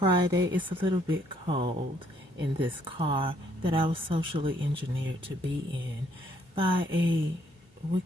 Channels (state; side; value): normal; both; correlation 0.68